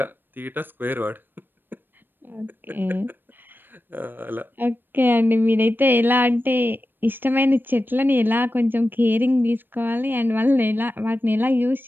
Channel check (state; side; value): late; left; 0.095 ms